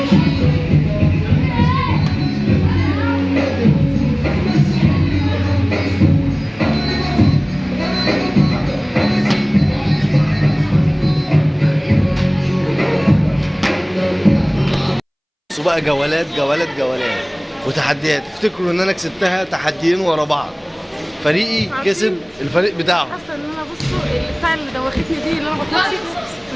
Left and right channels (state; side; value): identical; both; correlation 1.00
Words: بقى جولات وتحديات. افتكروا ان انا كسبتها تحديين ورا بعض. فريقي كسب الفريق بتاعه. حاسه ان انا بصوا البتاع اللي دوختني دي اللي انا بطلعش